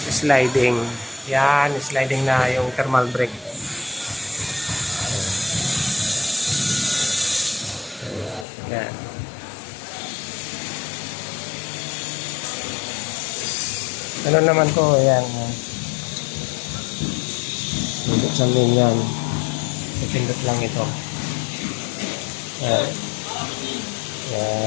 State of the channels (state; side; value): drops out; right; at 8.5 s